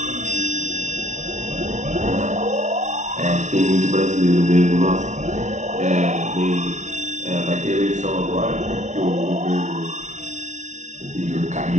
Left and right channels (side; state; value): left; late; 0.35 ms